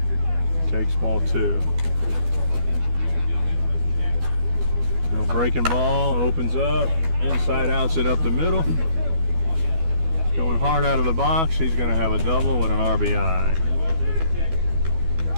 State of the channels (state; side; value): late; left; 12 ms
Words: Takes ball 2. No breaking ball, opens up, inside outs it up the middle. He's going hard out of the box. He's going to have a double with an RBI.